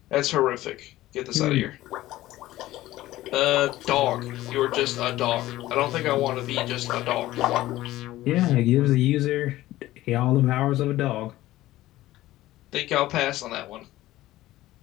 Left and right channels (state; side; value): quieter; right; 16.0 dB